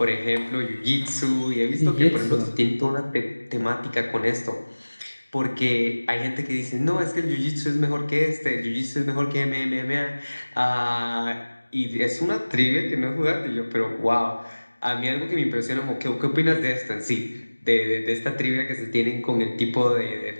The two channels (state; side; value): inverted; both; correlation -1.00